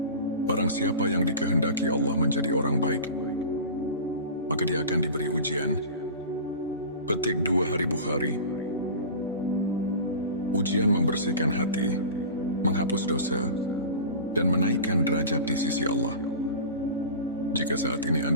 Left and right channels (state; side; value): inverted; both; correlation -0.34